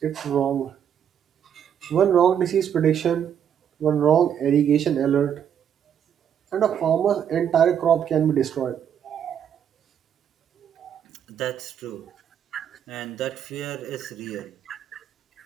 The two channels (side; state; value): left; quieter; 8.8 dB